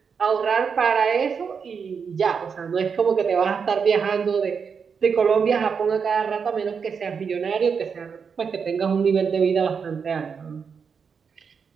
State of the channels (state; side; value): quieter; left; 6.1 dB